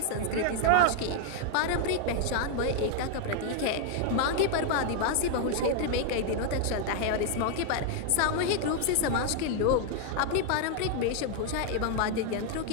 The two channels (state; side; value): different; both; correlation 0.00